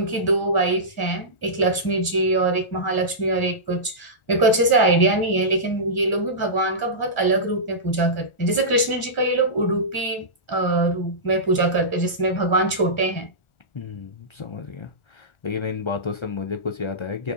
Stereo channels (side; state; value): right; late; 1.4 ms